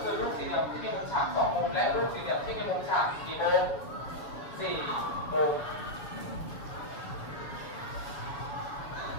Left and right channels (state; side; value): late; right; 7.3 ms